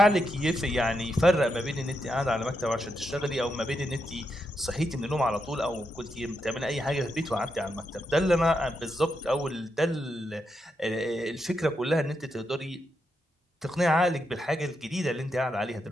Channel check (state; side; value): normal; both; correlation 0.83